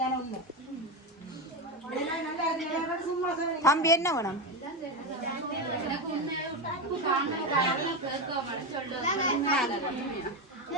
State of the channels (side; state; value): both; normal; correlation 0.14